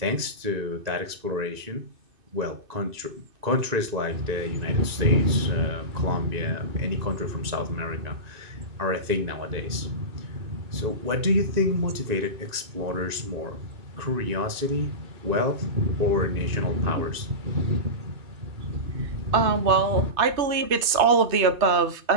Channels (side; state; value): left; late; 2.6 ms